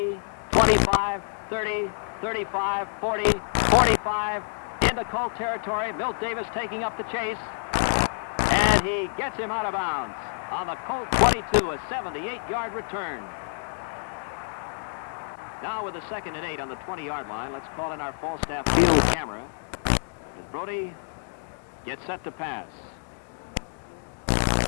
25, 30, 35, 40, 45, into Colt territory. Milt Davis taking up the chase, and he gets him out of bounds on the Colt 22, a 78-yard return. Now with a 2nd and 8 on the 20-yard line, let's call in our Falstaff field camera as Brody gets set to pass.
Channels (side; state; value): right; silent; digital silence